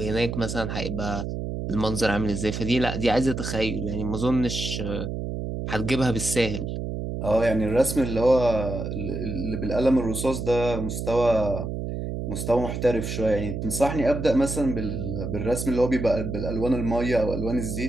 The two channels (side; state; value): right; noise; hum, 4 dB below the sound